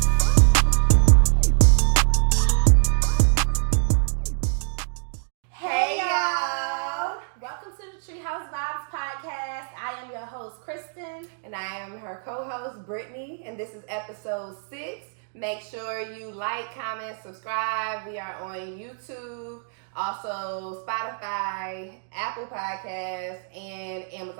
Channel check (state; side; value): silent; left; digital silence